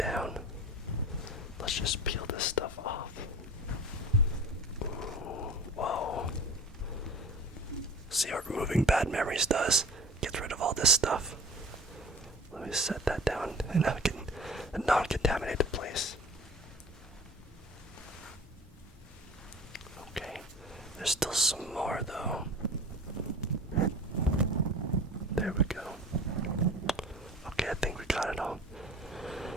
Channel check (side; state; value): both; normal; correlation 0.39